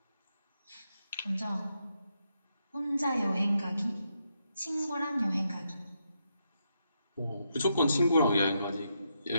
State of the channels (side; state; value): both; inverted; correlation -0.81